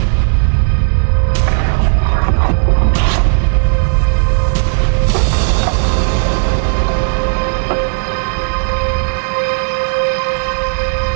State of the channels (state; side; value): silent; left; 71 dB below the other